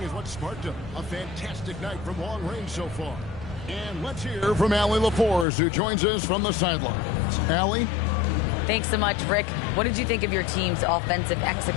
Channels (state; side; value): drops out; right; at 5.5 s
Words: is what sparked a fantastic night from long range so far. And let's hear from Allie LaForce, who joins us from the sidelines. Allie? Thanks so much, Rick. What did you think of your team's offensive